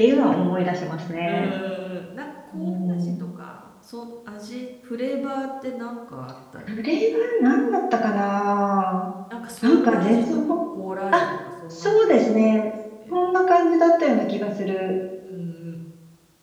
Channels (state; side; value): identical; both; correlation 1.00